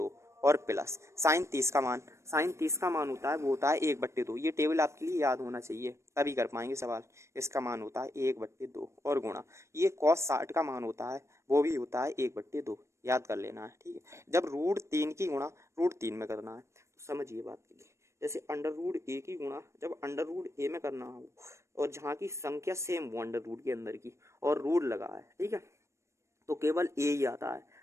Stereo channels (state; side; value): late; left; 0.14 ms